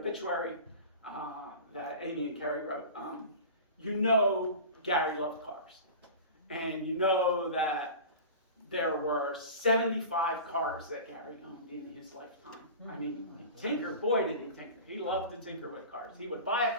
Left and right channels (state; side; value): inverted; both; correlation -0.34